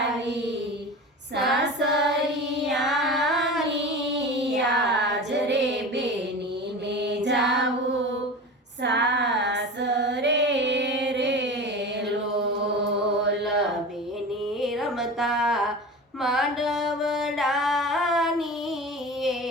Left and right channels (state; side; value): normal; both; correlation 0.32